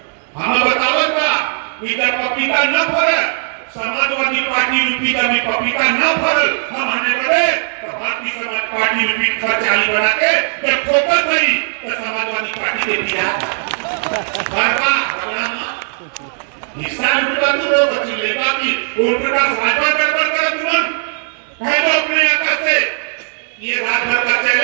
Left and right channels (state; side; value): silent; left; 64 dB below the other